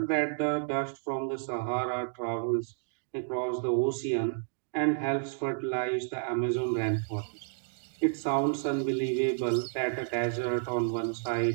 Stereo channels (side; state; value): left; silent; digital silence